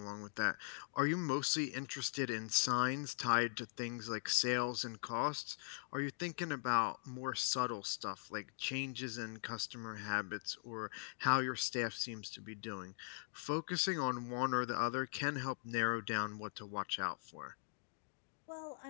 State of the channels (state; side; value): silent; right; digital silence